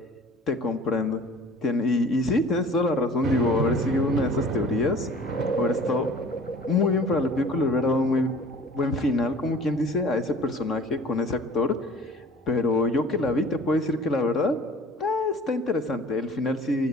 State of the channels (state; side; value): normal; both; correlation 0.47